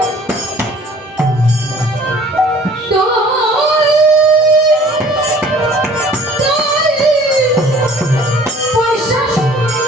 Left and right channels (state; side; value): normal; both; correlation 0.51